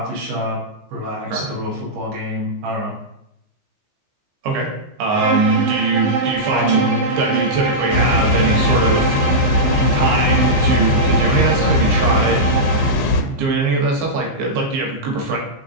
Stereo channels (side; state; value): left; late; 15 ms